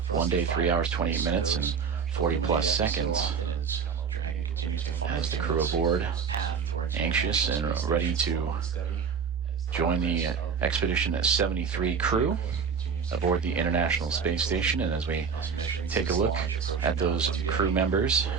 1 day, 3 hours, 28 minutes, and 40 plus seconds. As the crew aboard, anxious and ready to join the Expedition 73 crew aboard the International Space Station. And as we take a look at those crew members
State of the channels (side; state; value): left; quieter; 6.2 dB